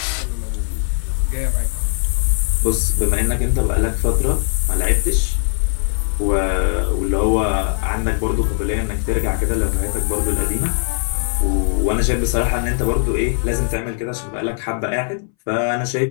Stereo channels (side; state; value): right; silent; 63 dB below the other